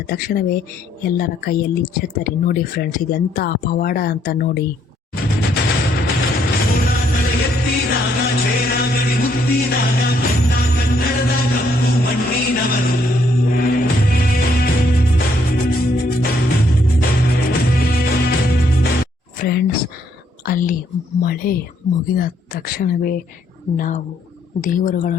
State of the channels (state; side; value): normal; both; correlation 0.70